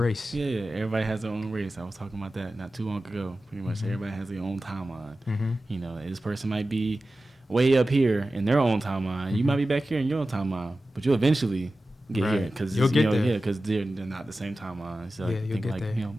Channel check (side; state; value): both; normal; correlation 0.94